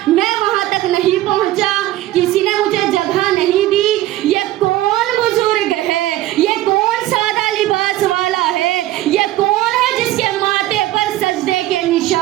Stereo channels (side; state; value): left; quieter; 15.2 dB